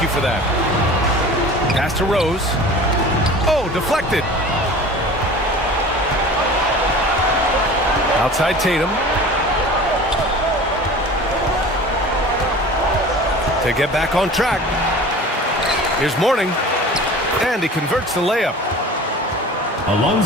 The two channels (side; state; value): both; normal; correlation 0.40